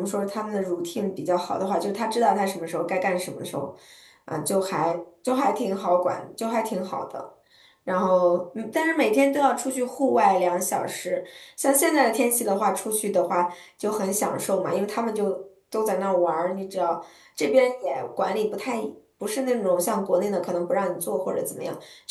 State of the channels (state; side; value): identical; both; correlation 1.00